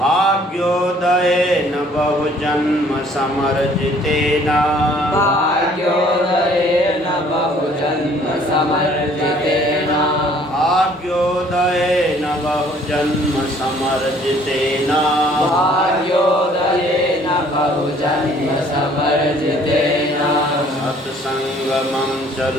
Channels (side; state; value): both; normal; correlation 0.58